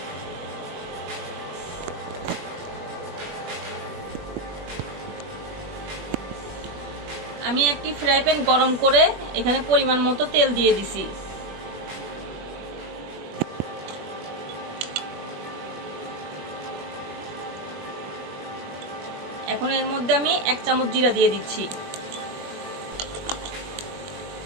আমি একটি ফ্রাই প্যান গরম করে এখানে পরিমাণ মতো তেল দিয়ে দিছি। এখন এর মধ্যে আমি 1 চামচ জিরা দিয়ে দিচ্ছি।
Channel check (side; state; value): left; late; 21 ms